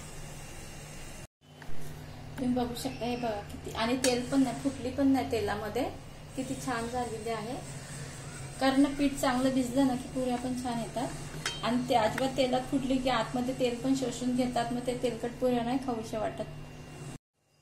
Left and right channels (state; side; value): identical; both; correlation 1.00